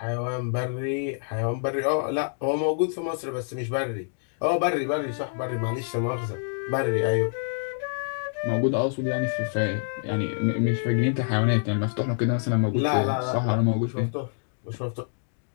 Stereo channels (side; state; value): right; silent; digital silence